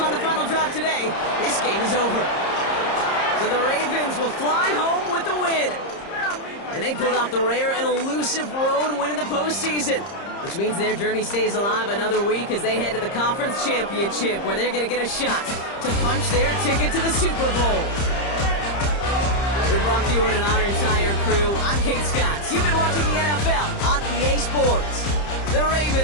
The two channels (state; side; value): late; right; 30 ms